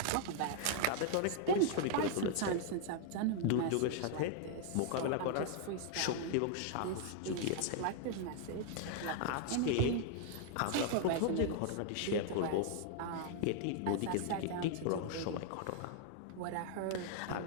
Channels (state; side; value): different; both; correlation 0.00